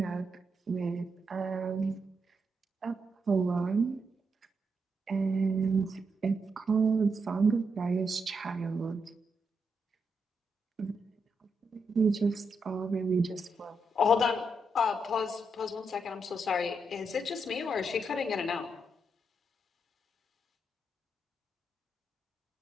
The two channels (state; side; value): normal; both; correlation 0.82